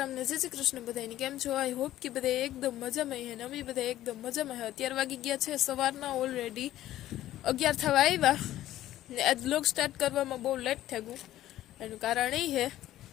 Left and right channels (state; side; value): quieter; right; 13.8 dB